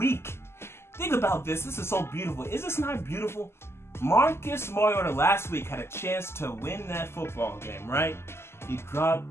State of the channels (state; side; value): late; right; 0.12 ms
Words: Think about this. This is so beautiful. Is this not beautiful? Marcus Mariota last week had a chance to win that football game, right? He